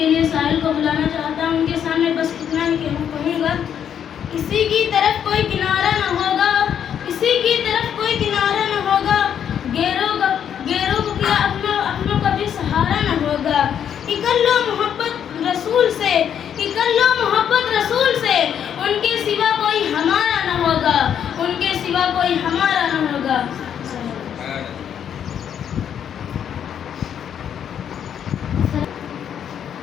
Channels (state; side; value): quieter; right; 8.9 dB